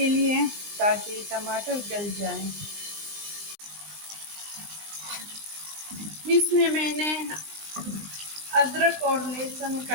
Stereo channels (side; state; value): left; late; 19 ms